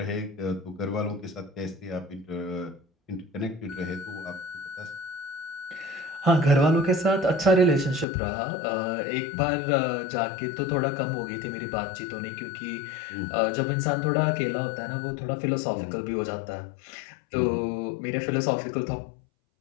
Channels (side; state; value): right; drops out; at 8.1 s